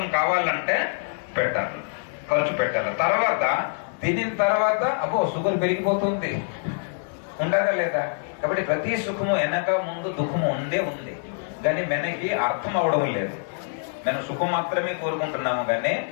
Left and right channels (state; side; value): silent; right; digital silence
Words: కావాలంటే పెట్టాలి, ఖర్చు పెట్టాలి. తర్వాత తినిన తర్వాత అబ్బో షుగర్ పెరిగిపోతుంది, ఉంటుందా లేదా? కాబట్టి ప్రతి సుఖము వెనక ముందు దుఃఖము ఉంది, కానీ వెనక్కి అర్థం అవడం లేదు. మేము సుఖం మాత్రమే కోరుకుంటున్నాము, కానీ